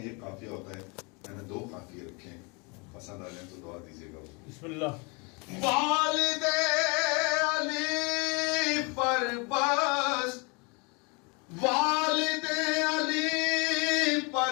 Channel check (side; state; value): right; quieter; 31.2 dB